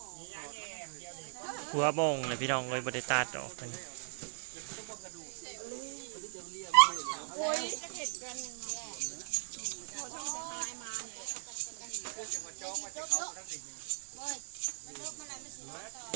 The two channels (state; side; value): silent; left; digital silence